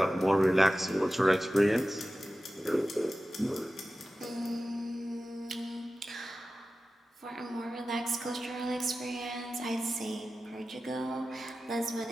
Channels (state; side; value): normal; both; correlation 0.95